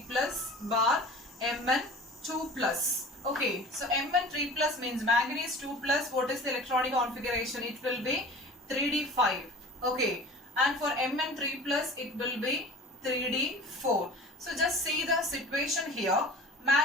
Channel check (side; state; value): both; normal; correlation 0.41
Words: plus bar Mn 2 plus. Okay, so Mn3 plus means manganese 2 plus. What is the electronic configuration? It will be 3d5. Okay, and for Mn3 plus it will be 3d4. So just see the situation here.